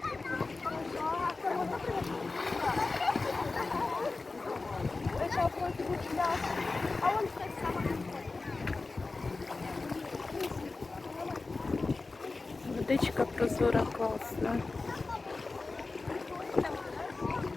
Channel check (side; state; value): right; quieter; 3.7 dB